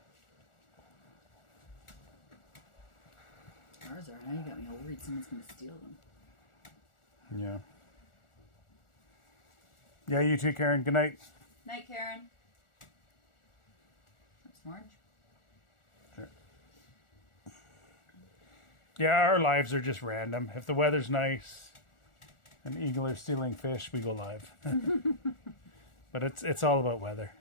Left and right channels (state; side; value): late; right; 1.4 ms